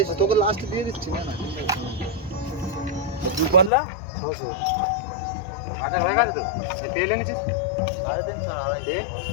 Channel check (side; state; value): right; drops out; at 3.7 s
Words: তোকে লাস্ট দিয়ে দিচ্ছি না। দু পাল্লা 600 বাজার হয়ে গেছে তো? তেল এনেছিস? 350 আর আড়াই রে।